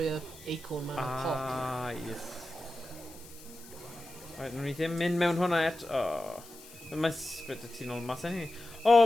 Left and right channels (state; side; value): noise; left; hiss, 19 dB below the sound